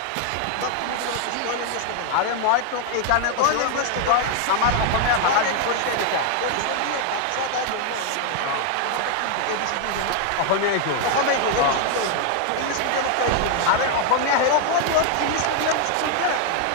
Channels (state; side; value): different; both; correlation 0.00